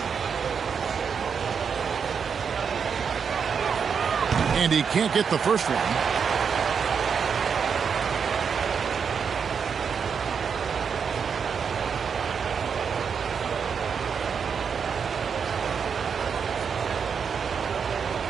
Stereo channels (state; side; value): quieter; left; 6.5 dB